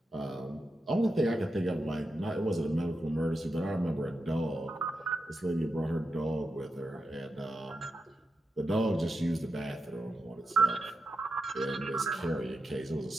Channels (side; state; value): both; normal; correlation 0.88